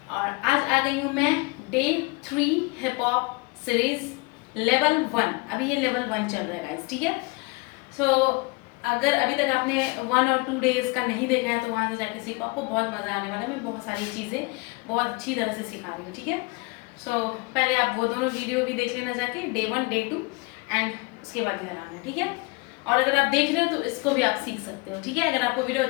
और आज आ गई हूँ मैं day 3 hip hop series level 1। अभी ये लेवल 1 चल रहा है गाइस, ठीक है। सो अगर अभी तक आपने 1 और 2 डेज का नहीं देखा है तो वहाँ से जाके सीखो, आपको बहुत मज़ा आने वाला है। मैं बहुत सारी चीज़ें बहुत अच्छी तरह से सिखा रही हूँ, ठीक है। सो पहले आप वो दोनों वीडियो भी देख लेना जाके, डे 1 डे 2 एंड उसके बाद इधर आना, ठीक है। और अगर आप देख रहे हो तो इसको भी आप सीख सकते हो, ठीक है। अगर आपको वीडियो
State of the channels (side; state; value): right; quieter; 27.1 dB